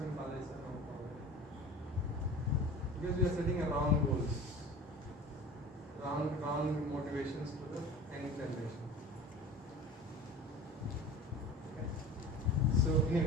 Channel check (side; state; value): both; normal; correlation 0.38